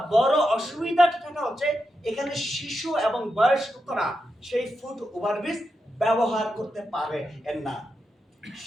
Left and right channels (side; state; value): both; normal; correlation 0.87